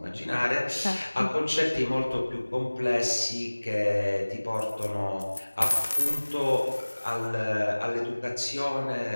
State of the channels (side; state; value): both; inverted; correlation -1.00